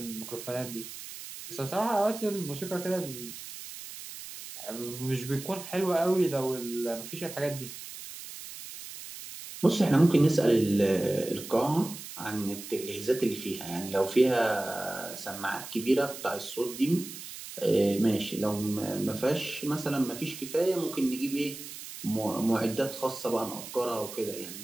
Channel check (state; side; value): noise; right; hiss, 12 dB below the sound